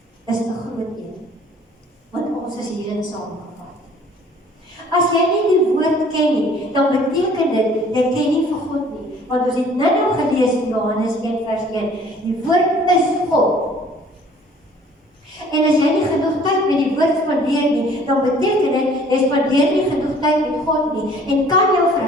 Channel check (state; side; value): normal; both; correlation 0.54